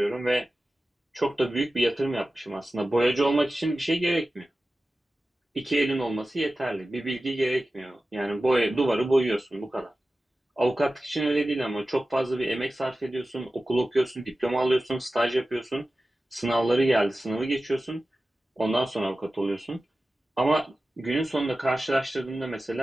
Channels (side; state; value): both; normal; correlation 0.95